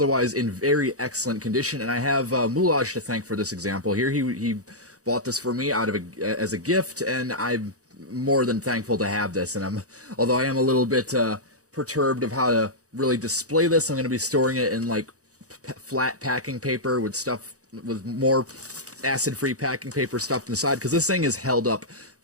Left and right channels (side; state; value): left; late; 0.66 ms